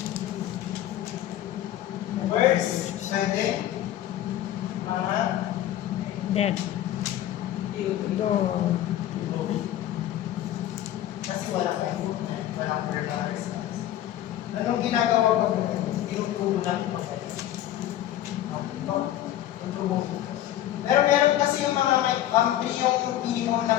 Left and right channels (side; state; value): right; quieter; 12.7 dB